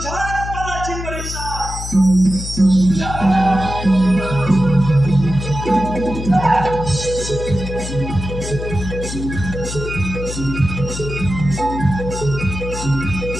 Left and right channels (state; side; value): noise; left; hum, 7 dB below the sound